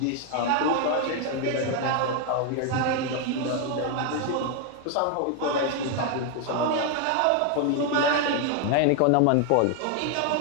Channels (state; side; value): different; both; correlation 0.00